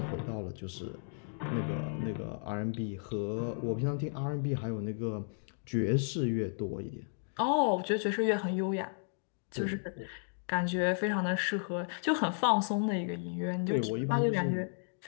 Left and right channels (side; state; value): right; silent; digital silence